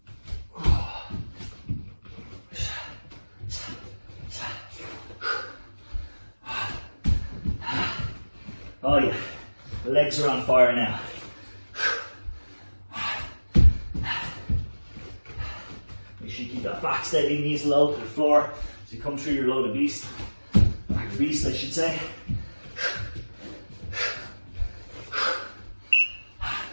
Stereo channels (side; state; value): both; inverted; correlation -1.00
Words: Oh yeah, the legs are on fire now. Make sure you keep that back steady, knees low to the floor as you come through your load of beast. Back of beast, I should say.